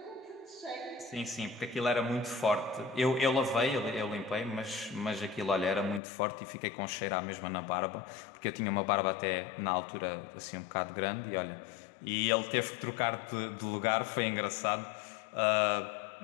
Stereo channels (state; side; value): drops out; right; at 6.0 s